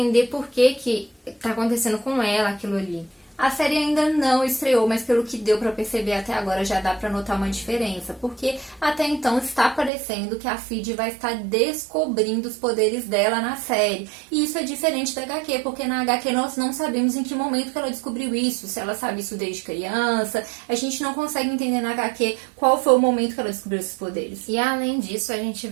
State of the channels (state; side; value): drops out; left; at 9.9 s